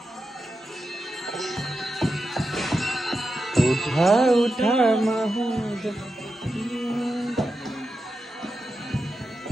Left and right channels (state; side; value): normal; both; correlation 0.89